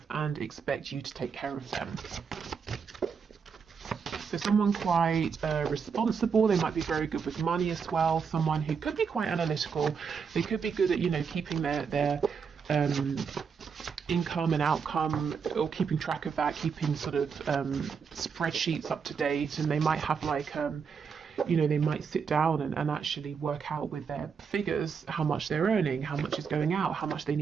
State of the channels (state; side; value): quieter; left; 6.1 dB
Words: and expect you to take care of them. So someone quite responsible. They might be very good with money as well. Someone who could be quite analytical. They could be good at, you know, keeping their income and outcome, or keeping track of that, keeping sort of spreadsheets up to date. And they might have like you know, they might sit down and actually work out with their figures how much they're earning, how much is going out, how much they